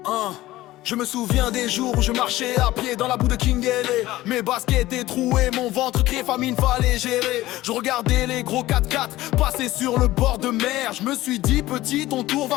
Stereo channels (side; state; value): right; quieter; 16.7 dB